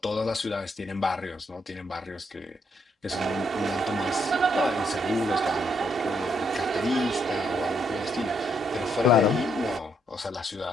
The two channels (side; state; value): both; normal; correlation 0.74